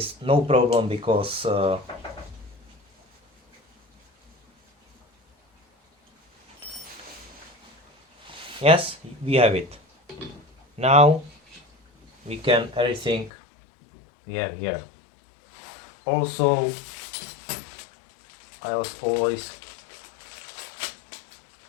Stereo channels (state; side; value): drops out; right; at 13.3 s